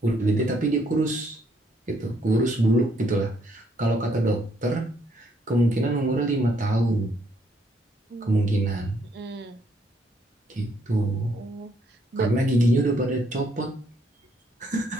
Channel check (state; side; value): normal; both; correlation 0.70